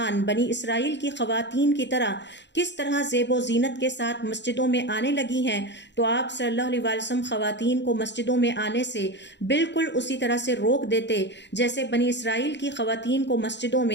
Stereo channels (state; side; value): late; right; 0.52 ms